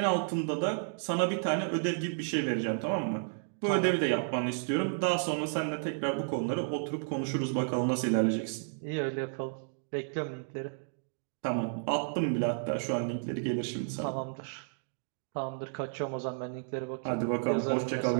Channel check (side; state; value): left; silent; digital silence